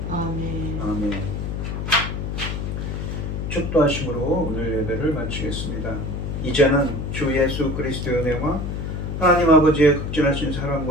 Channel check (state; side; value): noise; left; hum, 4 dB below the sound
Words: 아멘. 아멘. 축도하심으로 오늘 예배를 마치겠습니다. 이제는 주 예수 그리스도의 은혜와 하나님 아버지의 극진하신